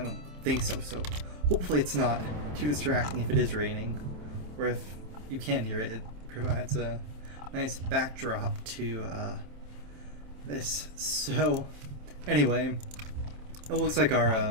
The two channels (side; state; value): left; late; 27 ms